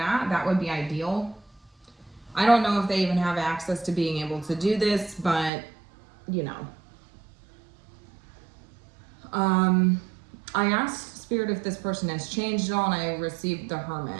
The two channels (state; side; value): drops out; left; at 5.5 s